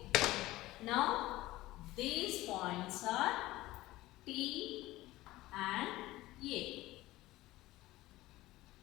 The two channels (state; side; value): quieter; right; 17.6 dB